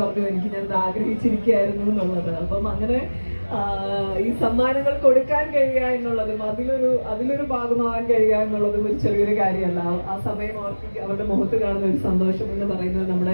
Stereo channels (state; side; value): inverted; both; correlation -1.00